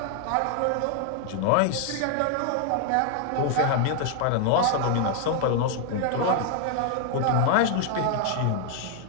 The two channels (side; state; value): both; different; correlation 0.00